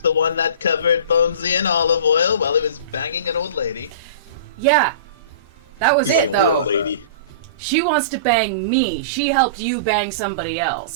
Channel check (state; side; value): inverted; both; correlation -0.37